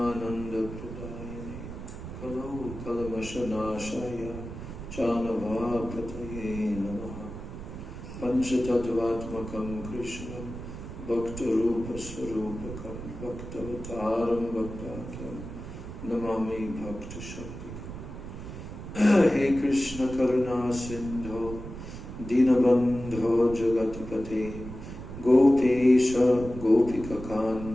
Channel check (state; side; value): noise; right; rumble, 10 dB below the sound